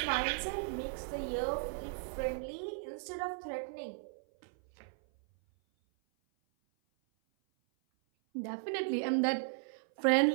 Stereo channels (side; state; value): left; silent; 54 dB below the other